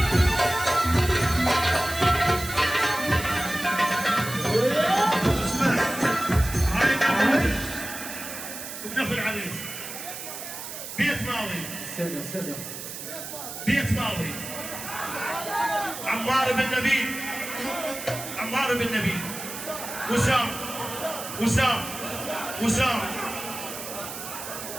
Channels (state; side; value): noise; right; hiss, 9 dB below the sound